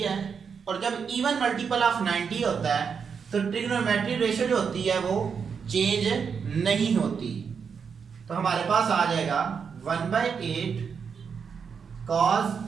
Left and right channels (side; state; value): left; quieter; 6.3 dB